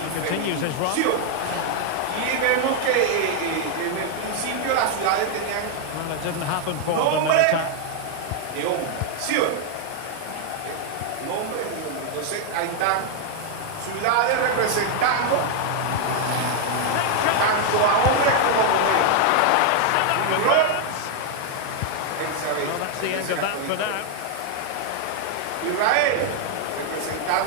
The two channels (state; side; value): different; both; correlation 0.00